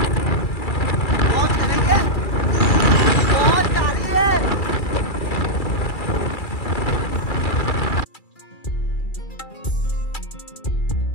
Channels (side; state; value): right; late; 2.3 ms